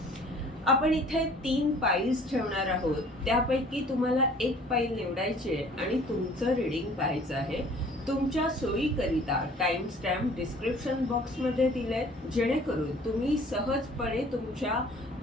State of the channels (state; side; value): normal; both; correlation 0.52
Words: आपण इथे 3 पाईल्स ठेवणार आहोत. त्यापैकी तुम्हाला एक पाईल निवडायची आहे आणि तुमचं रीडिंग पाहायचं आहे. तुमच्या सोयीकरिता टाइम स्टॅम्प डिस्क्रिप्शन बॉक्समध्ये दिलेत, जेणेकरून तुम्ही सहजपणे तुमच्या